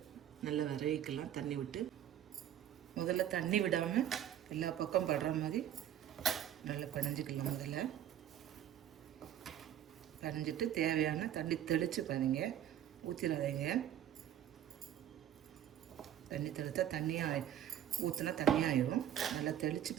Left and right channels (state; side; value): quieter; left; 10.8 dB